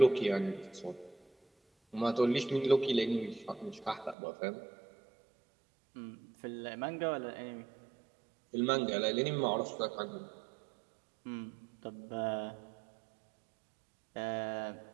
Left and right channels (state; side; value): drops out; left; at 4.2 s